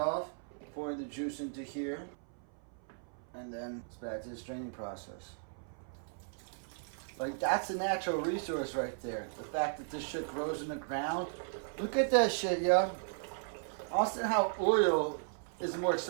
pour the juice into here. And then it's back to the straining process. Like, that's a natural resource right there. The fact that this shit grows in the ground. Look at that shit, yo. Also, how oil is more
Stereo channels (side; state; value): left; silent; 54 dB below the other